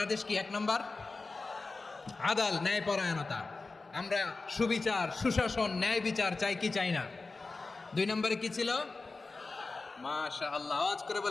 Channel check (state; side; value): quieter; right; 3.8 dB